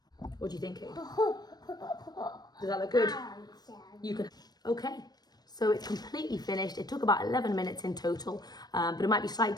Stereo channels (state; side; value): late; right; 0.19 ms